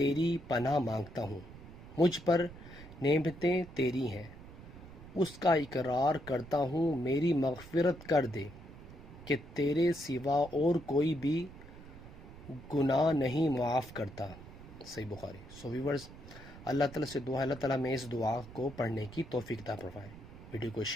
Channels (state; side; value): noise; right; rumble, 16 dB below the sound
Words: پناہ مانگتا ہوں۔ مجھ پر نعمتیں تیری ہیں، اس کا اقرار کرتا ہوں، میری مغفرت کر دے کہ تیرے سوا اور کوئی بھی گناہ نہیں معاف کرتا۔ صحیح بخاری۔ ویورز، اللہ تعالیٰ سے دعا ہے اللہ تعالیٰ میں اس دعا کو پڑھنے کی توفیق عطا فرمائے۔ ویڈیو کو